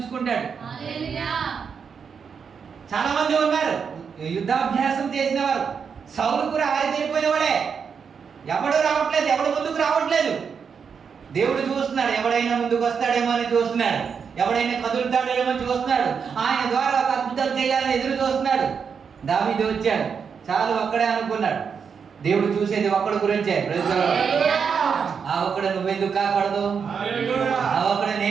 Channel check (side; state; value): left; quieter; 6.4 dB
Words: చాలా మంది ఉన్నారు యుద్ధాభ్యాసం చేసిన వారు. సౌలు కూడా ఆరితేరిపోయిన వాడే. ఎవడు రావట్లేదు, ఎవడు ముందుకు రావట్లేదు. దేవుడు చూస్తున్నాడు, ఎవడైనా ముందుకు వస్తాడేమో అని చూస్తున్నాడు, ఎవడైనా కదులుతాడేమో చూస్తున్నాడు. ఆయన ద్వారా ఒక అద్భుతాలు చేయాలని ఎదురు చూస్తున్నాడు. దావీదు వచ్చాడు, చాలు ఒక్కడే అనుకున్నాడు. దేవుడు చూసేది ఒక్కడి గురించే. ఆ ఒక్కడు నువ్వెందుకు కాకూడదు? ఆ ఒక్కడు